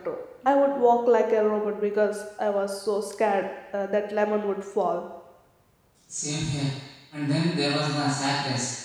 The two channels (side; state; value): both; identical; correlation 1.00